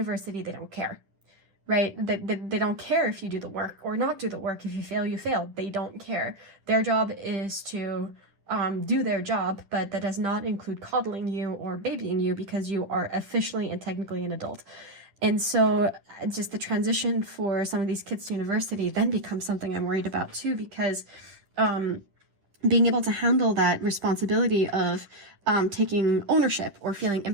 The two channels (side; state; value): left; late; 10 ms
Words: they don't care, right? They don't care if you do the work or not do the work. If you fail, you fail. They don't care. Their job is to do their job, but that does not include coddling you or babying you, because you are officially and technically an adult. And so just the transition for some of these kids to university then becomes something I'm worried about too, because being able to handle that responsibility of taking ownership or feeling